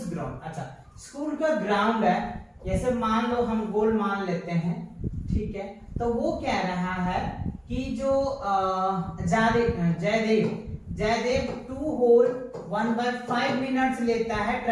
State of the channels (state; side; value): identical; both; correlation 1.00